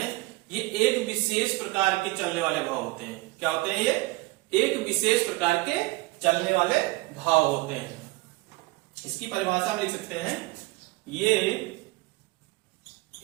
ये एक विशेष प्रकार के चलने वाले भाव होते हैं। क्या होते हैं, ये एक विशेष प्रकार के चलने वाले भाव होते हैं। इसकी परिभाषा में लिख सकते हैं, ये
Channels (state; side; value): quieter; left; 22.3 dB